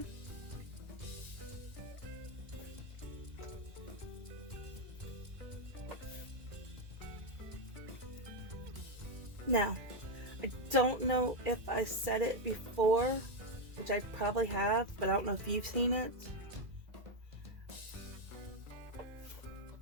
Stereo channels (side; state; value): left; late; 2.0 ms